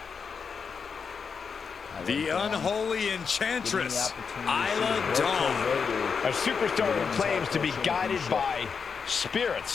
The unholy enchantress, Isla Dawn. A superstar who claims to be guided by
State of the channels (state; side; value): quieter; right; 5.8 dB